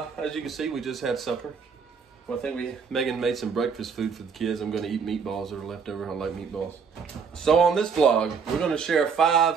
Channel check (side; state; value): left; quieter; 5.9 dB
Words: as you can see, we just had supper. Well, I think Megan made some breakfast food for the kids. I'm going to eat meatballs that are left over. I like meatballs. So on this vlog, we're going to share